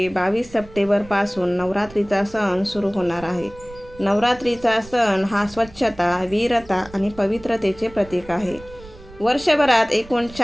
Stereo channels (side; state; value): right; noise; rumble, 20 dB below the sound